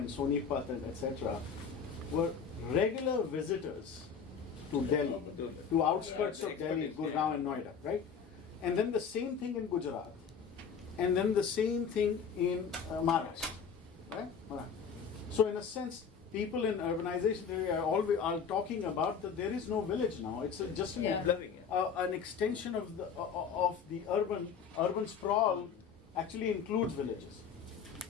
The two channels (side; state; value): right; quieter; 6.5 dB